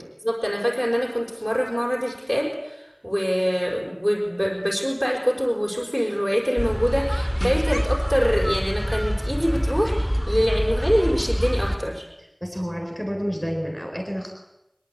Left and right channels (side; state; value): both; identical; correlation 1.00